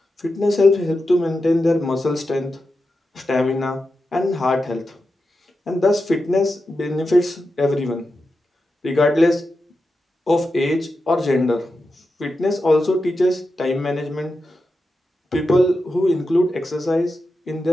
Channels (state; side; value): normal; both; correlation 0.90